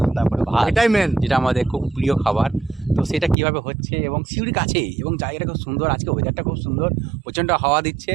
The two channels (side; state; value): left; drops out; at 3.4 s